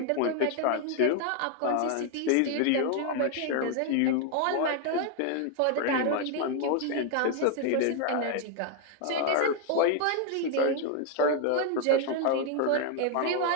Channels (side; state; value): both; different; correlation 0.00